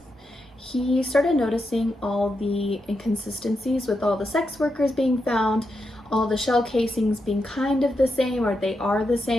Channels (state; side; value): normal; both; correlation 0.85